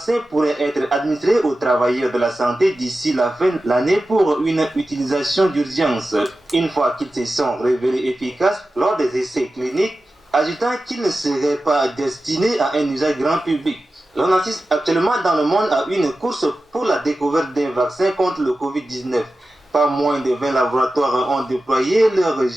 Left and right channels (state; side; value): normal; both; correlation 0.94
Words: pourraient être administrés aux travailleurs de la santé d'ici la fin de l'année pour une utilisation d'urgence, une fois qu'ils se sont révélés efficaces lors des essais cliniques, ajoutant qu'ils ne seraient pas destinés à un usage grand public. On assiste actuellement dans le monde à une course pour la découverte d'un vaccin contre le Covid-19. Pas moins de 20 laboratoires ont déployé leur